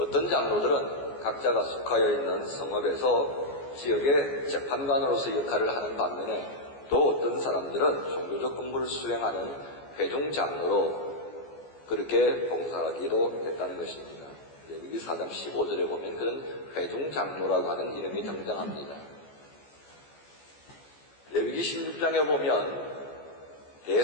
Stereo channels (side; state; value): right; late; 14 ms